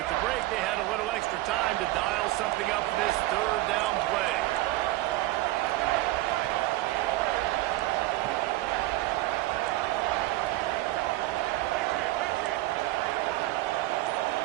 the break, they had a little extra time to dial something up for this third down play.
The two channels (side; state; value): left; quieter; 17.8 dB